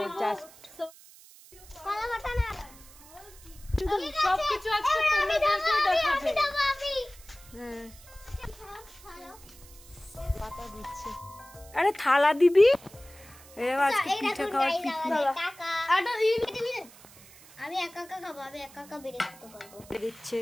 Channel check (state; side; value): noise; right; hiss, 22 dB below the sound